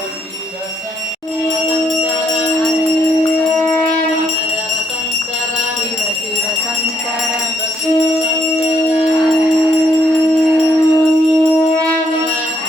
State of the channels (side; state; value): both; normal; correlation 0.73